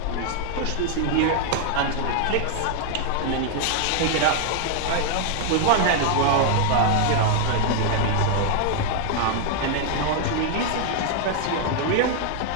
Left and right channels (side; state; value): both; different; correlation 0.00